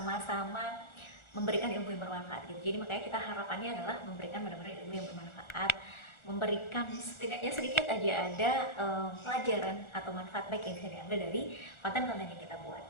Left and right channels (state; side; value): late; right; 1.4 ms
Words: memberikan ilmu yang bermanfaat gitu. Jadi makanya kita harapannya adalah memberikan benar-benar ilmu yang bermanfaat, memberikan setidaknya sedikit aja ada pelajaran atau manfaat baik yang bisa diambil dari konten-konten yang kita buat